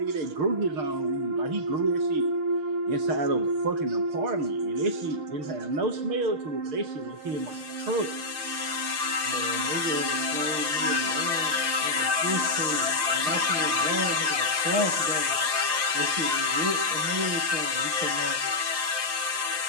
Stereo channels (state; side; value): late; left; 6.5 ms